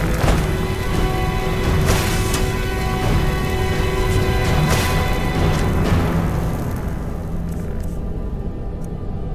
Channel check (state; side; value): identical; both; correlation 1.00